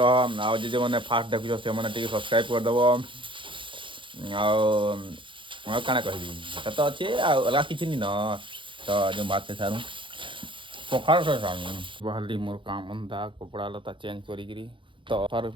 आ जे मैंने फास्ट देखुच से मैंने टी सब्सक्राइब करदेव आना कह तो अच्छे अलग किसी नहीं न तो जो बात से सारूँ पखाड़ से सारूँ बाहरी मोर काम अंधा कपड़ा लता चेंज करी तो हर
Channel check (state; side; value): late; left; 0.24 ms